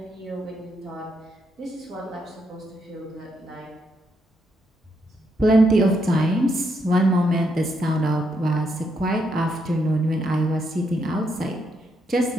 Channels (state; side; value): normal; both; correlation 0.77